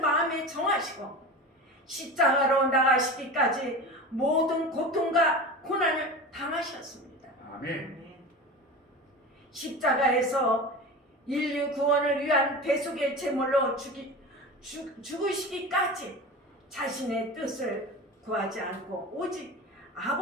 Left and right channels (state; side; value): normal; both; correlation 0.31